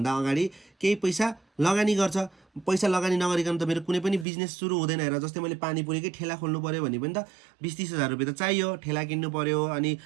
अगाडि केही पैसा लगानी गर्छ। पैसा लगानी नगरिकन त मेरो कुनै पनि बिजनेस सुरु हुँदैन। हेर जस्तै मैले पानीपुरीकै ठेला खोल्नु पऱ्यो भने पनि त 20-30 हजार रुपियाँ त चाहियो, ठेला किन्नु पऱ्यो अनि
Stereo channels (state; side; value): drops out; left; at 4.2 s